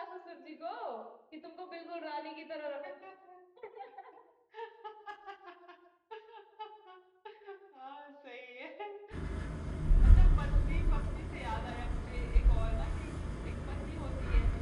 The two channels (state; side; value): identical; both; correlation 1.00